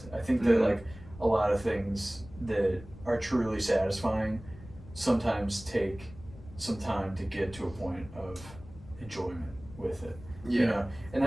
I think that, like, a lot of things that are truly satisfying sometimes take some time to get to a point of enjoyment with it. Yeah. You know? And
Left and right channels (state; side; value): noise; left; rumble, 17 dB below the sound